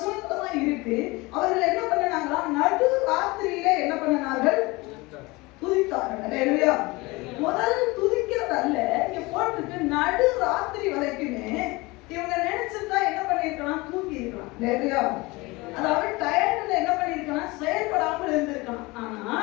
தான் இருக்கு. அவர்கள் என்ன பண்ணாங்களா, நடு ராத்திரியில என்ன பண்ணார்கள், துதித்தார்கள். முதல் துதிக்கிறது அல்ல, இங்க போட்டுட்டு நடு ராத்திரி வரைக்குமே இவங்க நினைச்சிருந்தா என்ன பண்ணிருக்கலாம், தூங்கி இருக்கலாம். அதாவது டயர்ட்ல என்ன பண்ணிருக்கலாம், செயல்படாமல் இருந்திருக்கலாம். ஆனா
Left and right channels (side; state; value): right; quieter; 23.3 dB